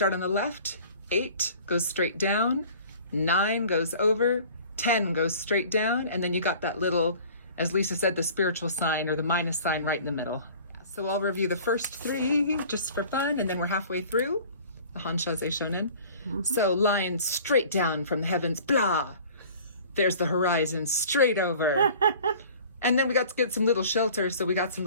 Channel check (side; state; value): both; inverted; correlation -0.47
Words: on the left, 8 goes straight down, 9 goes over, 10 goes straight down, and then you got that little, as Lisa said, the spiritual sign or the minus sign right in the middle. So I'll review the first 3 just for fun, and then we're halfway through the Hon Sha Sho Nen. So line straight down from the heavens, blah. There's the horizon straight over. And then we got to get some little shelter, so we got some